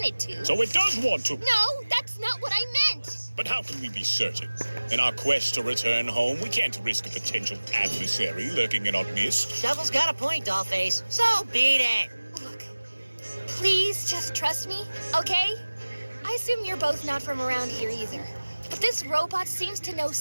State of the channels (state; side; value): inverted; both; correlation -1.00